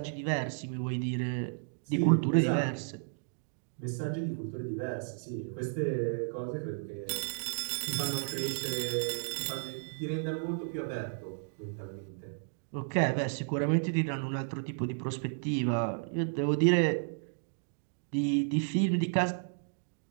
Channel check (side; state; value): left; silent; digital silence